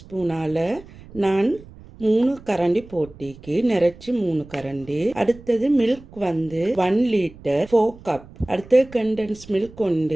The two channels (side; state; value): right; noise; rumble, 20 dB below the sound